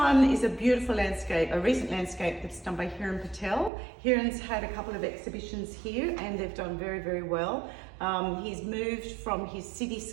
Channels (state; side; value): drops out; left; at 3.7 s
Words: is a beautiful landscape, a recent landscape that's done by Hiran Patel. Hiran's had a couple of exhibitions here and they've done very, very well. He's moved from his